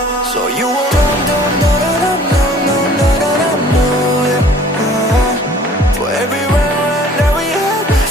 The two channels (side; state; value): both; normal; correlation 0.52